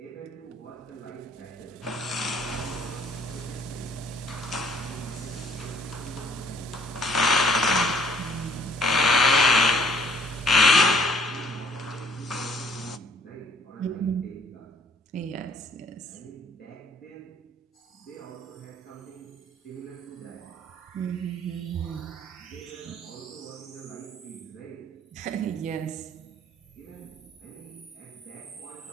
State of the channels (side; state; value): both; normal; correlation 0.59